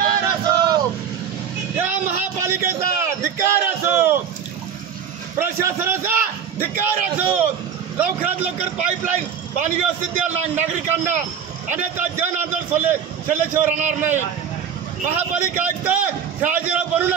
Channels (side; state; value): left; quieter; 7.7 dB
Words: असो, या महापालिकेचा धिक्कार असो, प्रशासनाचा धिक्कार असो। लवकरात लवकर पाईपलाईन पाणी व्यवस्थित द्या नागरिकांना, अन्यथा जन आंदोलन सल्ल्याशिवाय राहणार नाही। महापालिका आयुक्त शहाजीराव बनू